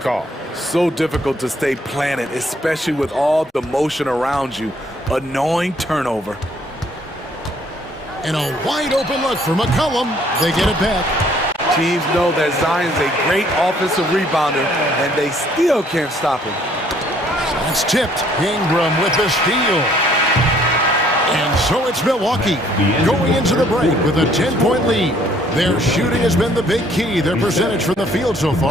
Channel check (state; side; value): normal; both; correlation 0.62